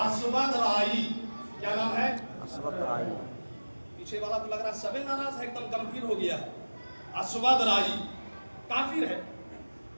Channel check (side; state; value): both; inverted; correlation -1.00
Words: رائی. کیا نام ہے؟ اسود رائی. پیچھے والا تو لگ رہا ہے سبے ناراض ہے، ایک دم گمبھیر ہو گیا. اسود رائی کافر ہے،